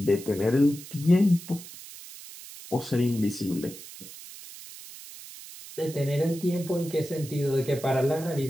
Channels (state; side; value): noise; right; hiss, 15 dB below the sound